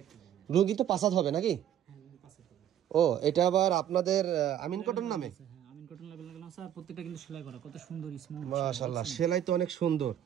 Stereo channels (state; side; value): quieter; left; 10.5 dB